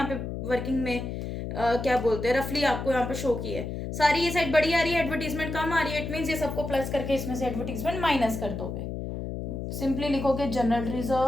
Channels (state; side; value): noise; left; hum, 5 dB below the sound